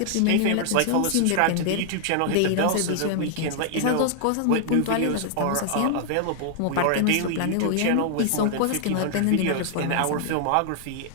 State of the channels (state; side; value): different; both; correlation 0.00